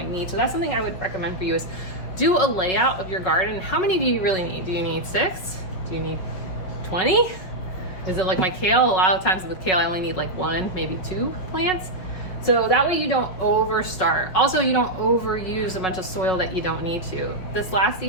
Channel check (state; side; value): late; right; 5.4 ms